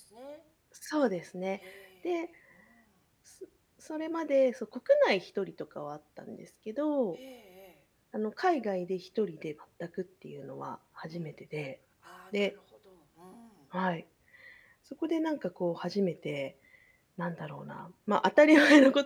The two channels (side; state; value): both; identical; correlation 1.00